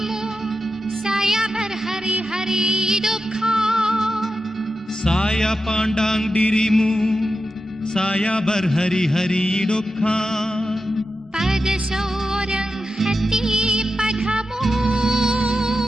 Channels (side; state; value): both; normal; correlation 0.90